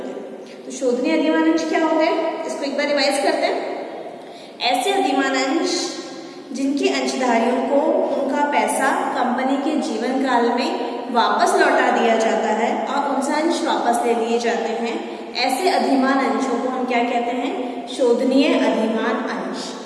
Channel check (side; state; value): both; identical; correlation 1.00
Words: हैं। तो शोधनीय अधिमान अंश क्या होते हैं इसको एक बार रिवाइज करते हैं। ऐसे अधिमान अंश जिनके अंशधारियों को उनका पैसा कंपनी के जीवन काल में वापस लौटा दिया जाता है और उनसे अंश वापस ले लिए जाते हैं, ऐसे अधिमान अंशों को हम क्या कहते हैं? शोधनीय अधिमान अंश,